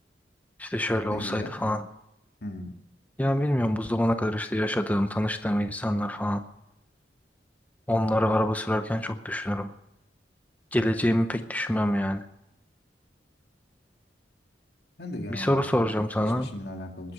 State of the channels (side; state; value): both; normal; correlation 0.90